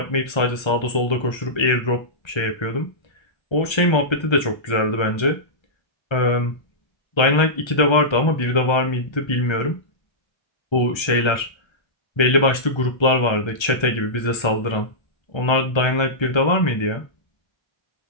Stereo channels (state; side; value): late; right; 1.3 ms